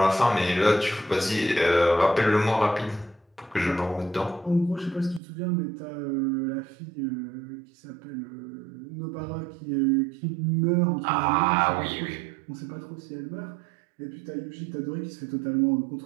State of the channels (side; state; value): left; drops out; at 5.2 s